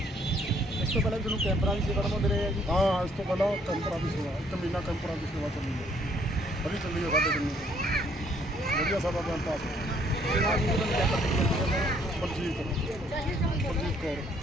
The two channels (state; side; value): normal; both; correlation 0.65